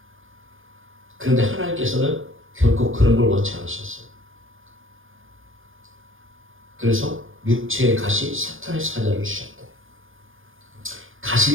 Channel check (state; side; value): late; left; 0.59 ms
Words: 그런데 하나님께서는 결코 그런 걸 원치 않으셨어요. 그래서 육체의 가시 사탄의 사자를 주셨다.